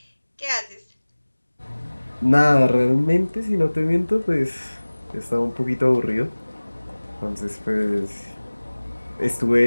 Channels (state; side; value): inverted; both; correlation -1.00